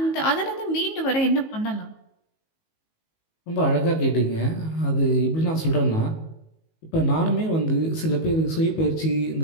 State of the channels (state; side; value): late; right; 19 ms